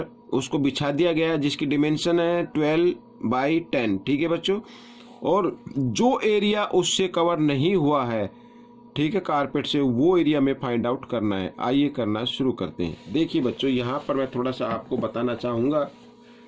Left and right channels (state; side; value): identical; both; correlation 1.00